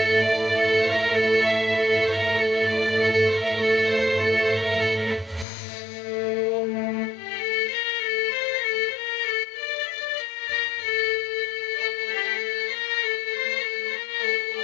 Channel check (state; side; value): drops out; right; at 5.5 s